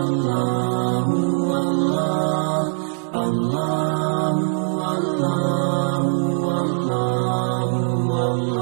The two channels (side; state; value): left; silent; 65 dB below the other